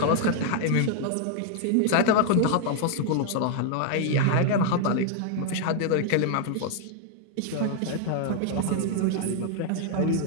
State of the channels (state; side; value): different; both; correlation 0.00